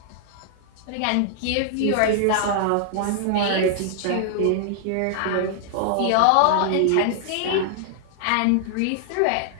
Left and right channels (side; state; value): both; different; correlation -0.01